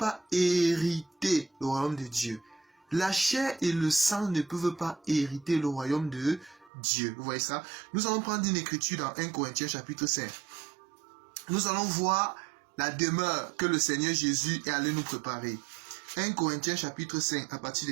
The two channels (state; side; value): drops out; left; at 6.7 s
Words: hériter le royaume de Dieu. La chair et le sang ne peuvent pas hériter le royaume de Dieu. Vous voyez ça? Nous allons prendre une écriture dans 1 Corinthiens chapitre 5. Nous allons voir la demeure que le Seigneur Jésus est allé nous préparer. 1 Corinthiens chapitre 5, à partir de